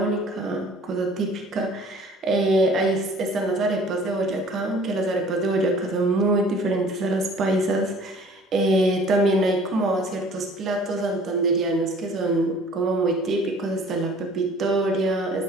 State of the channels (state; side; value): normal; both; correlation 0.51